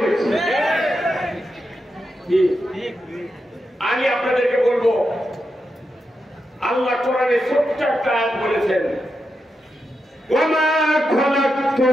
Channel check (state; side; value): normal; both; correlation 0.87